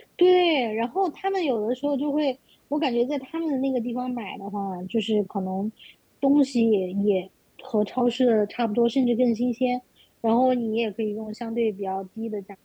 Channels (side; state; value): both; identical; correlation 1.00